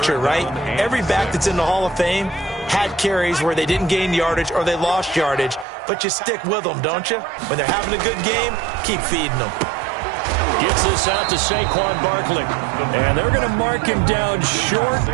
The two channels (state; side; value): drops out; left; at 5.7 s